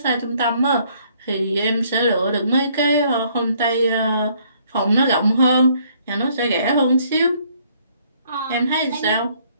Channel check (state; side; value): inverted; both; correlation -0.65